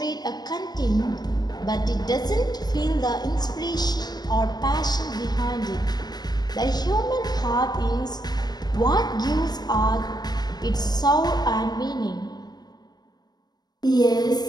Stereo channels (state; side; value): late; right; 0.19 ms